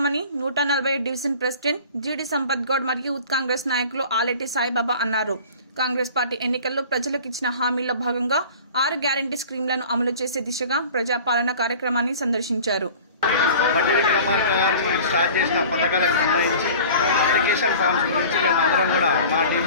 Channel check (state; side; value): inverted; both; correlation -0.43